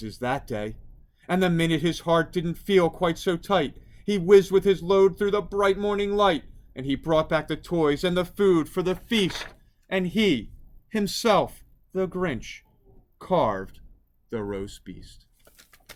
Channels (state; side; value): identical; both; correlation 1.00